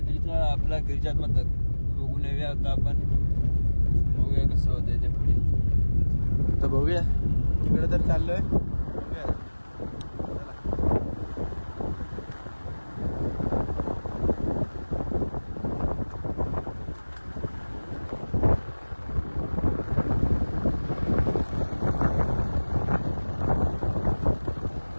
आपला गिरिजात्मक. बघून येऊया आता आपण. बघूया कसं होतंय ते पुढे. तर बघूया, तिकडे तर चाललोय.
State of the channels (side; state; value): both; inverted; correlation -1.00